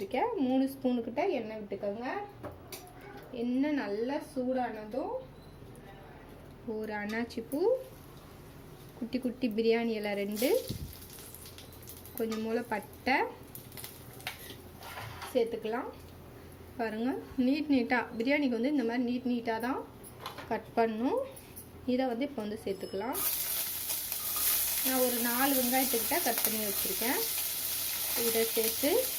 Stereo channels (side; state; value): both; identical; correlation 1.00